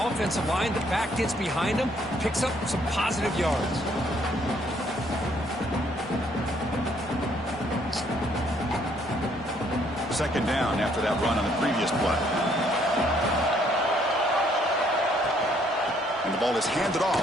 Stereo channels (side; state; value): both; normal; correlation 0.66